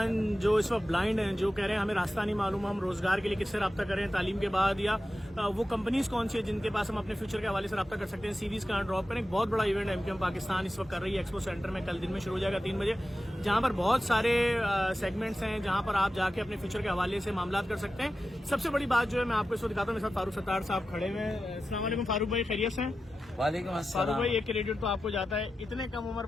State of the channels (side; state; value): both; normal; correlation 0.92